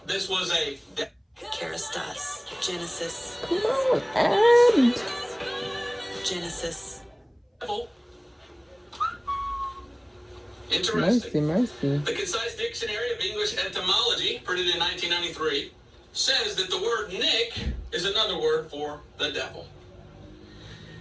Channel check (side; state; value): both; identical; correlation 1.00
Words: this was a Kerastas. Genesis. Come on, and Genesis. devil. Interesting. mercy. The Concise Dictionary of English Etymology, printed in 1993, says that the word Nick is another word for the devil.